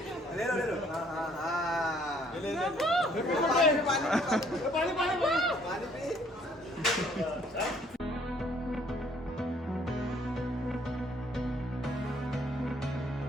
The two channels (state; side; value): normal; both; correlation 0.63